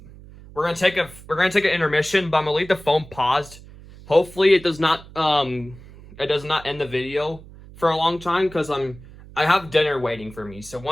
we're gonna take an intermission, but I'm gonna leave the phone paused. Hopefully, it does not end the video for a long time because I have dinner waiting for me. So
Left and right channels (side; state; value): right; noise; hum, 19 dB below the sound